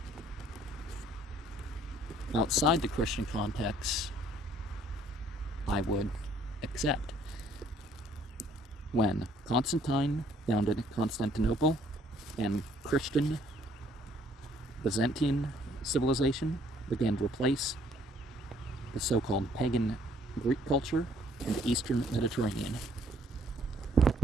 Outside the Christian context, I would accept. When Constantine founded Constantinople and Christian Byzantine civilization began to replace the so-called pagan Greek culture in the Eastern Mediterranean.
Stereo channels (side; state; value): both; normal; correlation 0.63